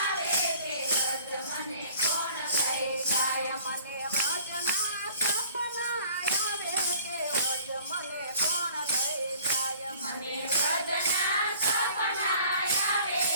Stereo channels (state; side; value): inverted; both; correlation -0.50